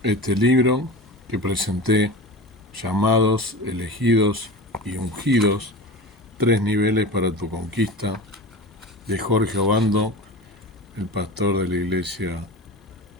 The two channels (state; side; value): normal; both; correlation 0.31